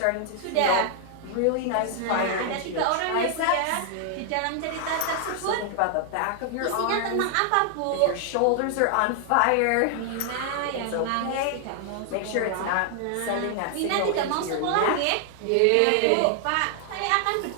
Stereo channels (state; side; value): different; both; correlation 0.00